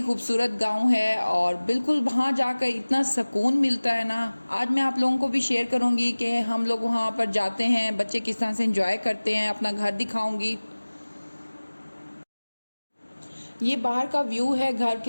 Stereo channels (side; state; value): both; inverted; correlation -1.00